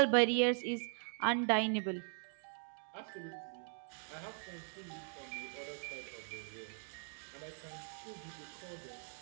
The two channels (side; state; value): left; silent; 51 dB below the other